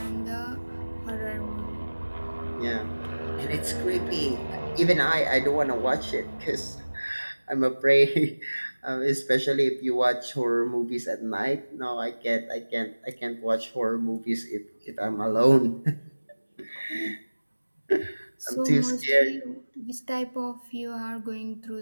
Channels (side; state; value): both; inverted; correlation -1.00